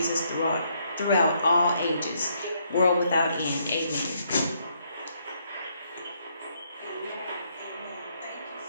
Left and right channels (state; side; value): inverted; both; correlation -0.72